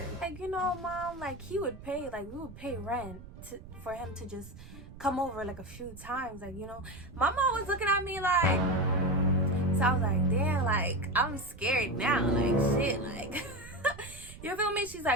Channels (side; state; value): right; noise; rumble, 17 dB below the sound